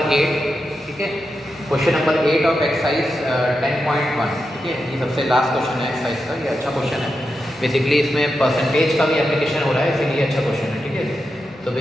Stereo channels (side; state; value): both; normal; correlation 0.88